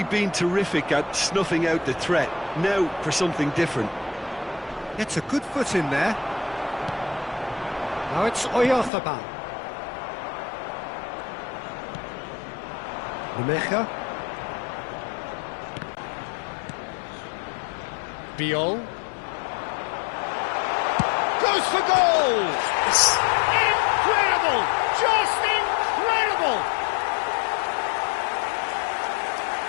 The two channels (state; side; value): drops out; right; at 8.9 s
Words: been terrific at snuffing out the threat. Now for something different. Gets a good foot in there. Now it's Oyarzabal. Rumecha. Biol. Goes for goal! Incredible! Just incredible!